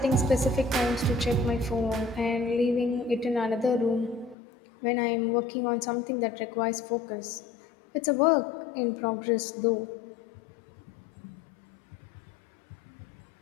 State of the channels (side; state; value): right; drops out; at 4.4 s